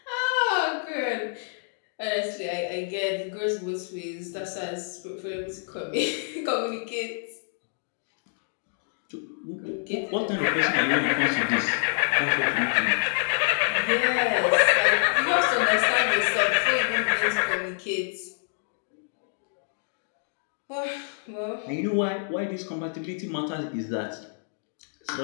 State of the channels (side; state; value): right; silent; digital silence